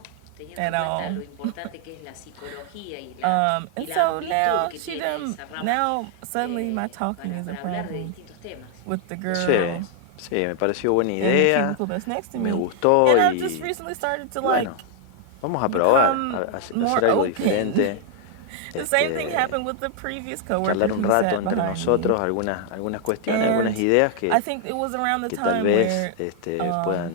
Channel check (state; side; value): different; both; correlation 0.00